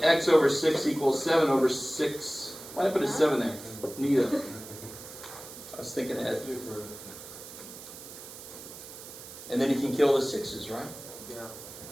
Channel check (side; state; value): right; noise; hiss, 14 dB below the sound